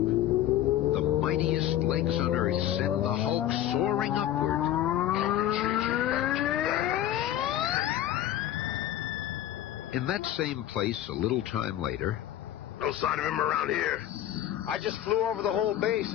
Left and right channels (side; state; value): right; quieter; 12.2 dB